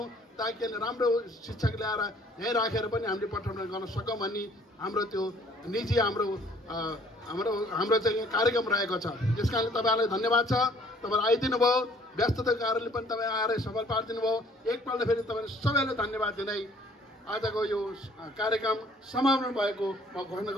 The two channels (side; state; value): both; normal; correlation 0.58